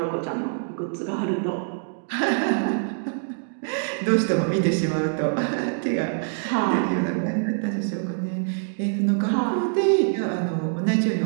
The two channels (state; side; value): silent; left; digital silence